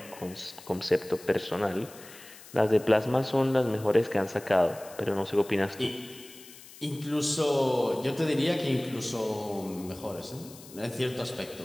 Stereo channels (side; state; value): left; noise; hiss, 19 dB below the sound